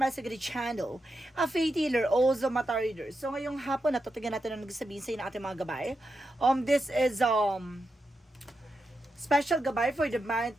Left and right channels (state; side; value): normal; both; correlation 0.87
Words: my Sagari channel, a faith healer, also mata reader. So ngayong hapon, natutugyan natin ang nagsasabihin sa inyo ng ating mga gabay. This is special gabay for the month